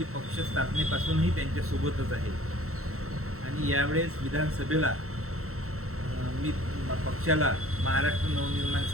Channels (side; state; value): left; late; 0.63 ms